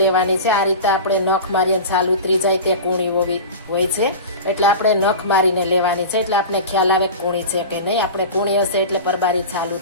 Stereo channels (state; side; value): inverted; both; correlation -0.31